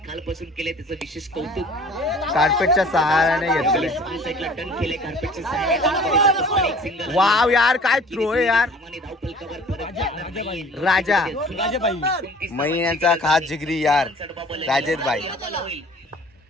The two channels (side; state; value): both; normal; correlation 0.49